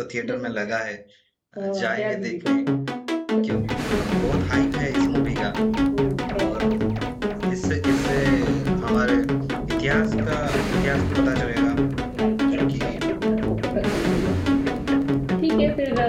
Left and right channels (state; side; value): identical; both; correlation 1.00